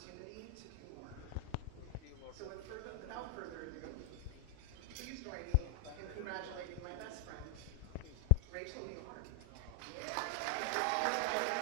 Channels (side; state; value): both; different; correlation 0.00